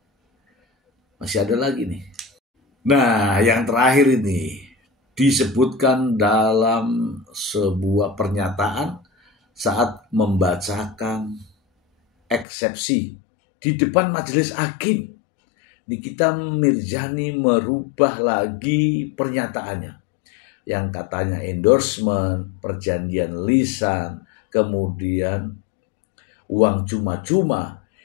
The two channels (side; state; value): right; drops out; at 12.5 s